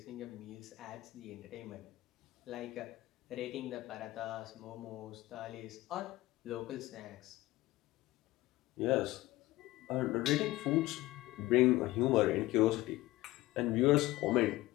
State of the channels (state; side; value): quieter; right; 18.1 dB